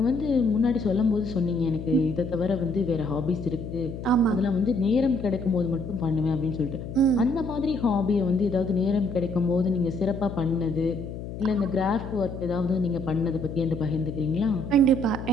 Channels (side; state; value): left; noise; hum, 9 dB below the sound